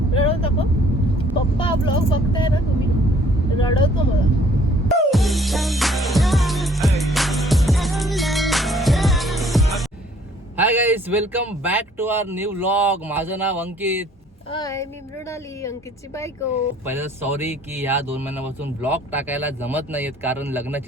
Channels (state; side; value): normal; both; correlation 0.58